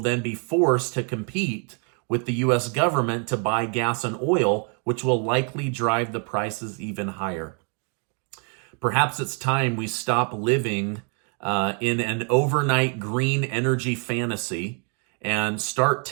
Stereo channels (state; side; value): quieter; left; 39.4 dB